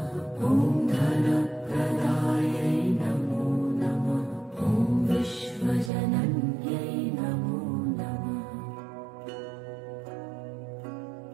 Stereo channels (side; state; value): left; drops out; at 5.9 s